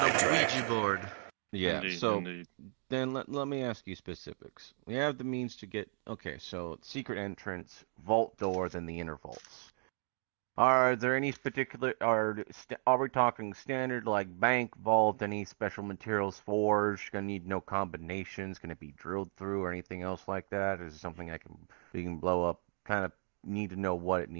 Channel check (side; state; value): left; silent; 54 dB below the other